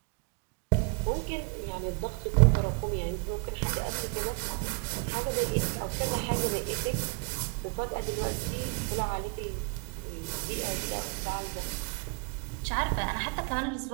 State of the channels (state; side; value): quieter; left; 34.8 dB